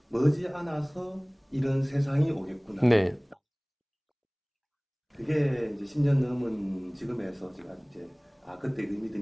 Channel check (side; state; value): both; identical; correlation 1.00